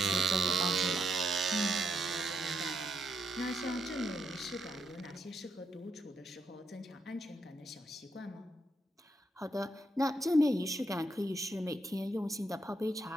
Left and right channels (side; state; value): both; normal; correlation 0.78